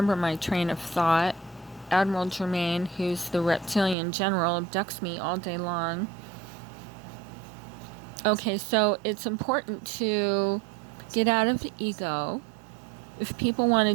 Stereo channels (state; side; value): drops out; left; at 4.0 s